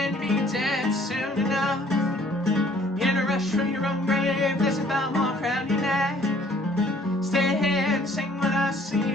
be dead soon enough. In a rush from your own grave, there's a bell mark around your neck. Stay here and sing with us so you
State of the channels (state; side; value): normal; both; correlation 0.58